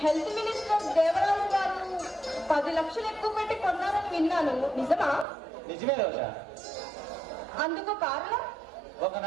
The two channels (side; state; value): left; drops out; at 5.2 s